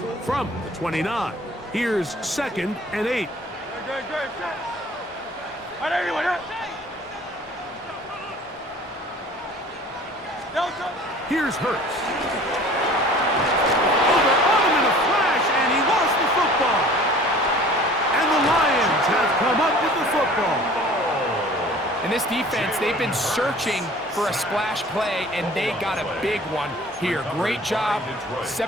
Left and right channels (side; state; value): both; normal; correlation 0.47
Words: From the 29, here's 2nd and 8. Great. Set. And anyway, yeah. Don't touch it. Here's Hurts. Over on him in a flash, and he lost the football. And the Lions have come up with the football. And this defense, they've been searching for a splash play, and they got a big one here. Great job